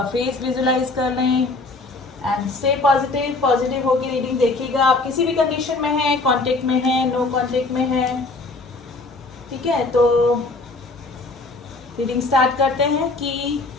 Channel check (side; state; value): right; quieter; 3.4 dB